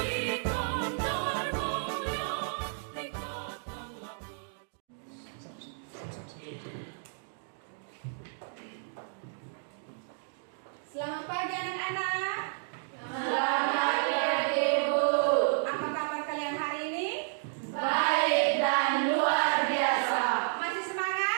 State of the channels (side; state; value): left; silent; digital silence